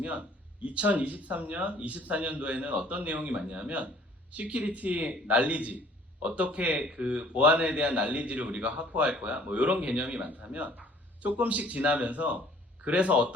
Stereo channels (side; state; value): both; normal; correlation 0.55